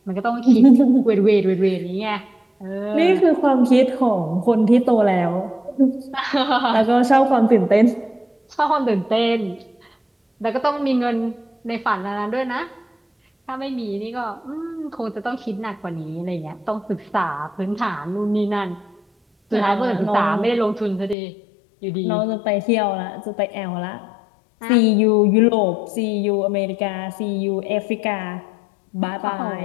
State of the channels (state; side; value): drops out; right; at 21.2 s